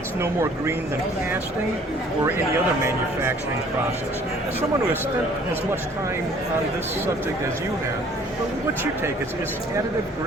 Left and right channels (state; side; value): normal; both; correlation 0.55